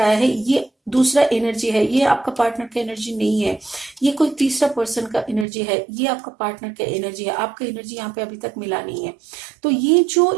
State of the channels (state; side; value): drops out; left; at 5.5 s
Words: है। ये दूसरा एनर्जी है, ये आपका पार्टनर का एनर्जी नहीं है, ये कोई तीसरा पर्सन का एनर्जी है, ये आपका पार्टनर का एनर्जी है। आपका एनर्जी यहाँ पे अभी तक मिला नहीं है। तो ये जो